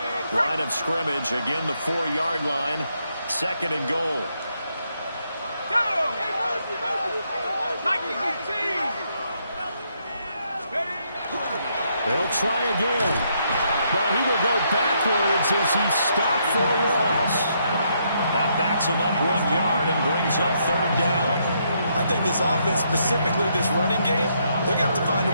Line of scrimmage, again the 4-yard line. Second and goal. They'll try again. But he will go backwards as he stopped for a loss. That backs him up 1 yard and brings up third down. I think this offense, specifically this running game, they're going to have to find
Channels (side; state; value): both; inverted; correlation -0.75